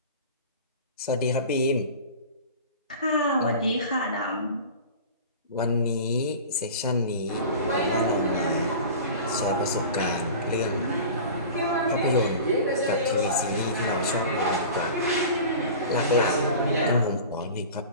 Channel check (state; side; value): inverted; both; correlation -0.37